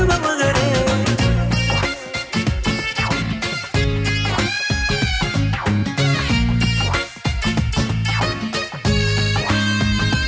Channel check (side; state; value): both; identical; correlation 1.00